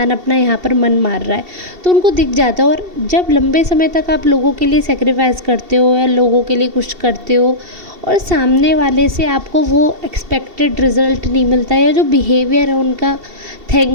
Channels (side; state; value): left; late; 2.7 ms